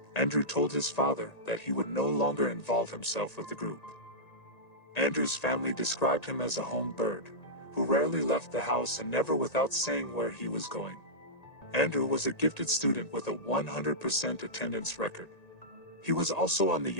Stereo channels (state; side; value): late; right; 1.9 ms